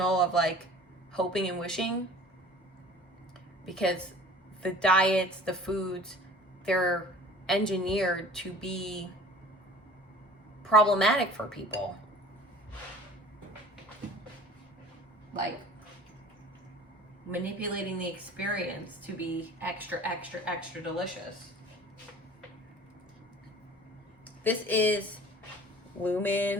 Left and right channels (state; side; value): normal; both; correlation 0.45